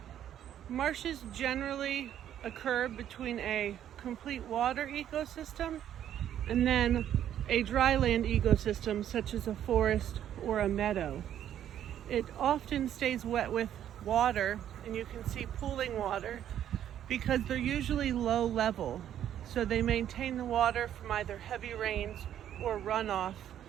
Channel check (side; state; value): left; quieter; 10.6 dB